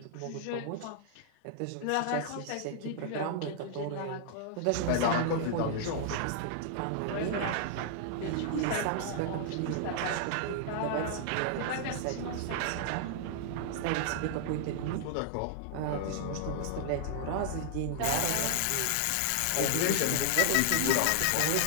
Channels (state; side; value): different; both; correlation -0.01